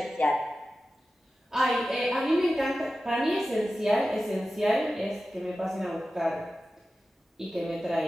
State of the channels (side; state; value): both; normal; correlation 0.94